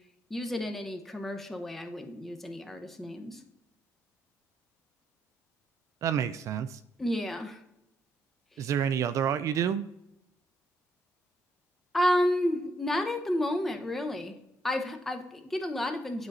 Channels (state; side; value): normal; both; correlation 0.76